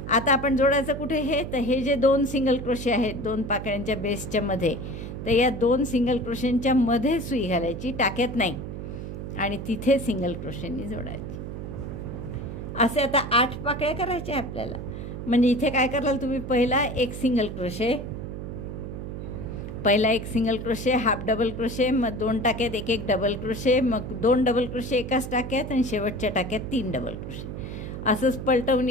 आता आपण जोडायचं कुठे हे, तर हे जे 2 सिंगल क्रोशे आहेत 2 पाकळ्यांच्या बेसच्या मध्ये, तर या 2 सिंगल क्रोशेंच्या मध्ये सुई घालायची, टाक्यात नाही, आणि तिथे सिंगल क्रोशेंनी जोडायची. असे आता 8 पाकळ्या करायच्या आपल्याला. म्हणजे इथे काय कराल तुम्ही, पहिला एक सिंगल क्रोशे, पहिला एक single crochet, half double crochet, मग 2 टाक्यात एक डबल क्रोशे, मग 2 डबल क्रोशे एकाच टाक्यात आणि शेवटच्या टाक्यात 3 डबल क्रोशे. असंच पलटवून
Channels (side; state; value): right; noise; hum, 8 dB below the sound